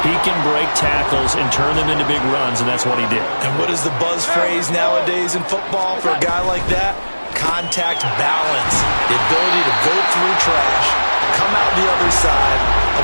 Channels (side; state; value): both; inverted; correlation -1.00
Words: He can break tackles and turn them into big runs, and that's what he did. And what is the buzz phrase nowadays in football for a guy like that? Contact balance. The ability to go through trash, come out the other side,